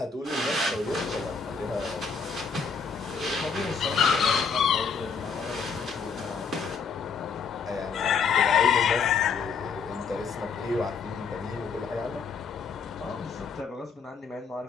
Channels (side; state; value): right; quieter; 5.6 dB